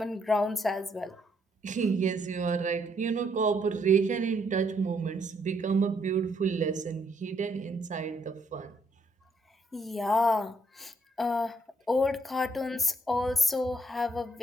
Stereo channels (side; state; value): both; normal; correlation 0.71